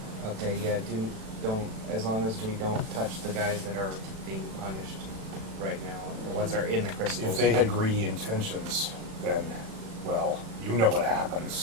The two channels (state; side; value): late; left; 36 ms